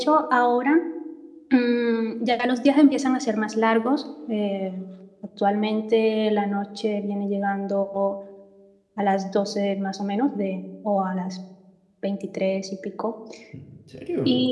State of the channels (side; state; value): both; identical; correlation 1.00